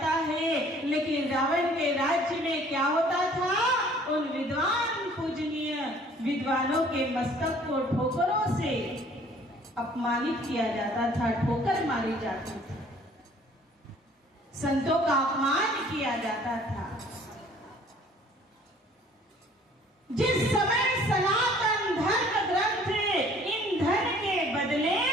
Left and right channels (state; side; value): normal; both; correlation 0.55